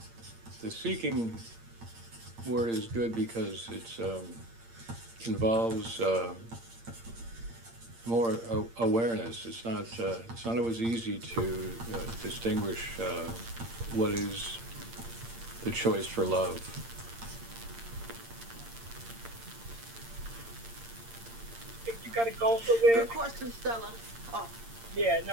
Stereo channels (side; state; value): left; late; 8.7 ms